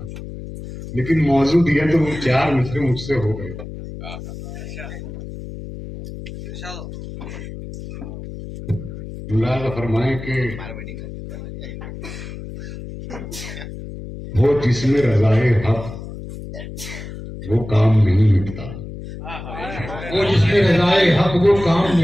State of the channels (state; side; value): noise; left; hum, 11 dB below the sound